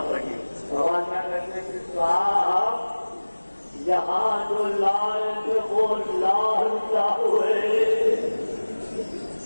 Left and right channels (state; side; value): inverted; both; correlation -1.00